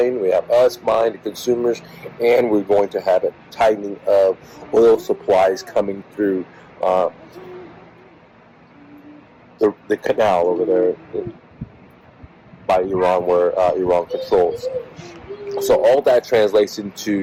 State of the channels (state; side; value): identical; both; correlation 1.00